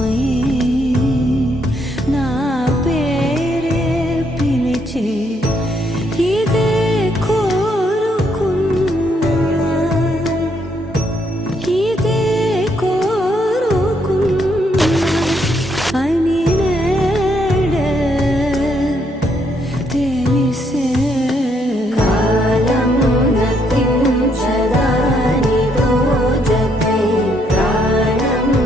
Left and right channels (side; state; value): both; normal; correlation 0.73